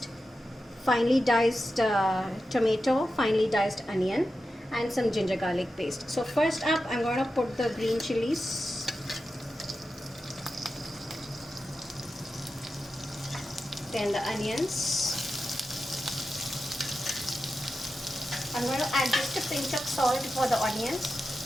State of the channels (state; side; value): normal; both; correlation 0.91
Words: finely diced tomato, finely diced onion, and some ginger garlic paste. So first up I'm going to put the green chilies. Then the onions. I'm going to add just a pinch of salt for the onions.